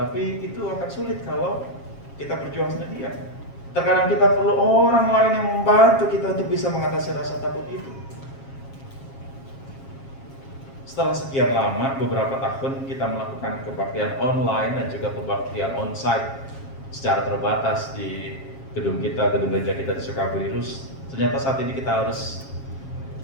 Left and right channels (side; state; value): right; late; 7.3 ms